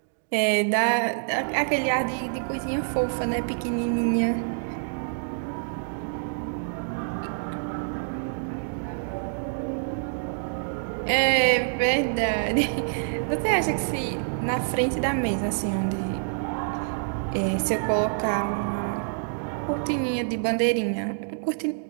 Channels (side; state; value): left; silent; digital silence